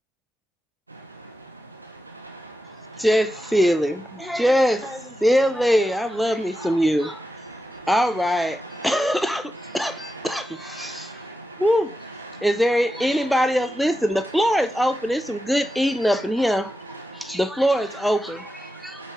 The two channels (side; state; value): both; normal; correlation 0.90